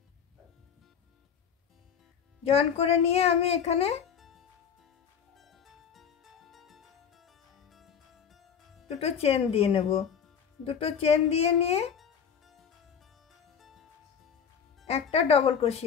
জয়েন করে নিয়ে আমি এখানে দুটো চেন দিয়ে নেব। দুটো চেন দিয়ে নিয়ে একটা ডবল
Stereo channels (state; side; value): quieter; right; 7.5 dB